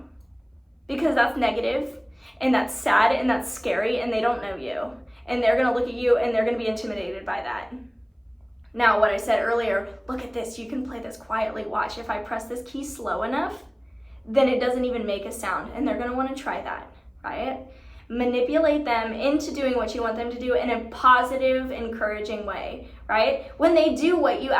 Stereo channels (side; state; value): both; identical; correlation 1.00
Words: because that's negative, and that's sad, and that's scary, and they don't know you. And they're gonna look at you, and they're gonna be intimidated by that. Now, what I said earlier, look at this, you can play this quietly. Watch, if I press this key slow enough, then it doesn't even make a sound, and they're gonna wanna try that, right? Manipulate them into doing what you want them to do in a positive, encouraging way, right? When they do what you